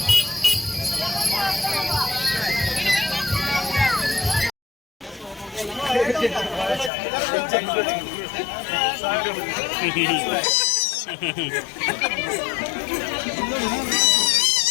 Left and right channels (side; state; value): right; drops out; at 6.9 s